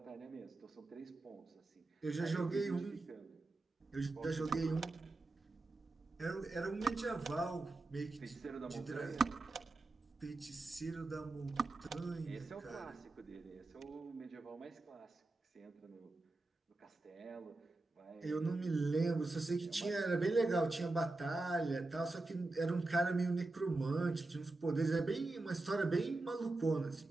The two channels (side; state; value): left; quieter; 3.1 dB